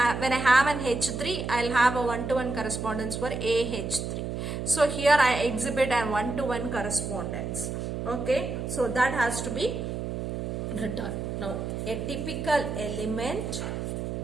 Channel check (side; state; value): right; noise; hum, 4 dB below the sound